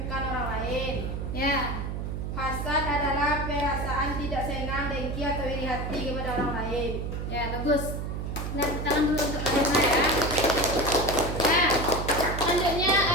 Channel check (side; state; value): right; noise; hum, 4 dB below the sound